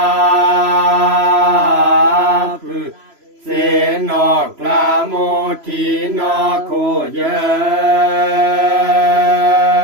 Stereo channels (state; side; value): late; left; 3.0 ms